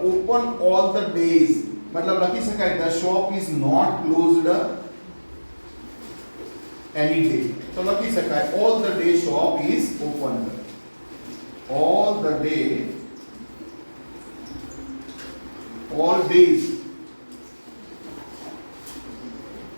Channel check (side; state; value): both; inverted; correlation -1.00